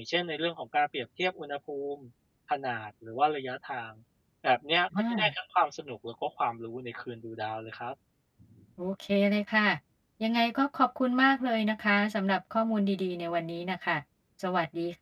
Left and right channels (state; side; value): identical; both; correlation 1.00